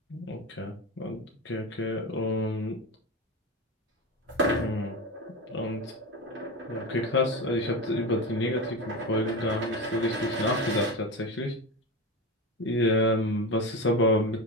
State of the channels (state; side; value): normal; both; correlation 0.21